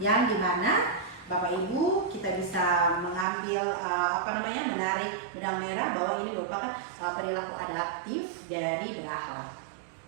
dimana Bapak Ibu kita bisa mengambil menarik benang merah bahwa ini merupakan perilaku adaptif dari berakhlak.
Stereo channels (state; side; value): drops out; left; at 3.2 s